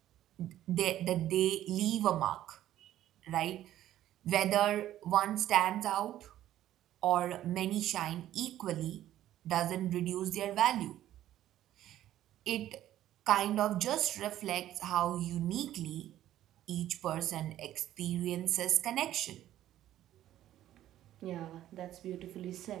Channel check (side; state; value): left; quieter; 12.8 dB